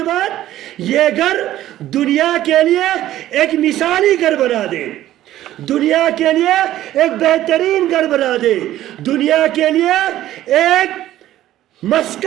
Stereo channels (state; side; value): quieter; left; 13.7 dB